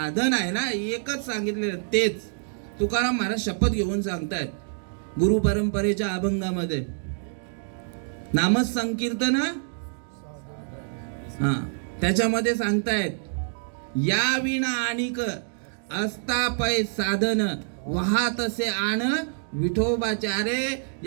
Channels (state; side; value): silent; left; digital silence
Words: आहे ना, एकच सांगितलेलं तेच. तुकाराम महाराज शपथ घेऊन सांगतायत गुरु परंपरेच्या अभंगामध्ये. नामच संकीर्तन, हा, त्याच्यामध्ये सांगतायत या विना आणिक असता पै साधन, वाहतसे आण विठोबाचारे.